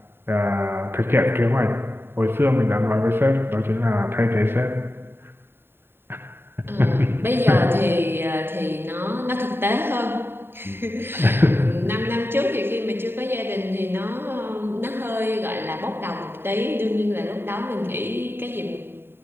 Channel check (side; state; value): left; late; 0.11 ms